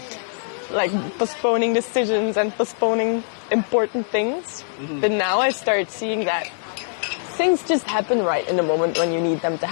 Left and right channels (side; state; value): right; silent; digital silence